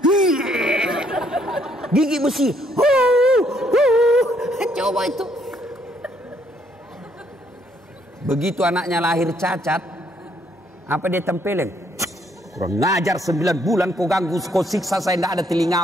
Gigi besi. Coba itu. Begitu anaknya lahir cacat, apa dia tempelin? Kurang ngajar 9 bulan kau ganggu, kau siksa saya, tidak ada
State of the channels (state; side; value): normal; both; correlation 0.69